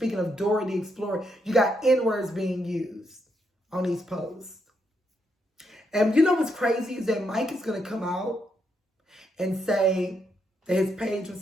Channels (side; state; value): both; normal; correlation 0.79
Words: of Dora the Explorer. You got N-words being used on these posts. And you know what's crazy is that Mike is going to come out and say that his page was